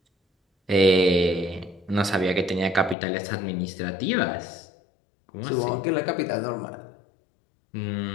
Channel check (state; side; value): drops out; right; at 3.0 s